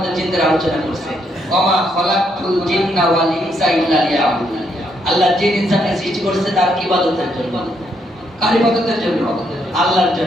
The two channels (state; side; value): normal; both; correlation 0.75